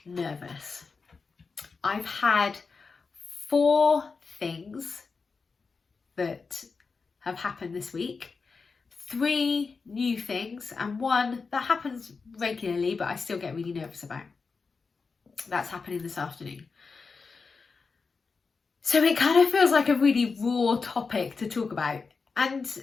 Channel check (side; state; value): right; quieter; 4.7 dB